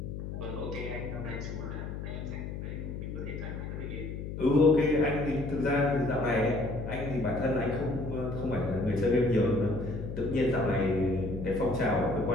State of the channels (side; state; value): left; noise; hum, 7 dB below the sound